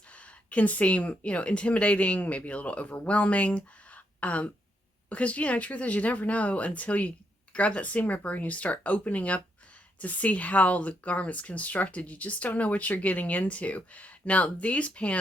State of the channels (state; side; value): normal; both; correlation 0.78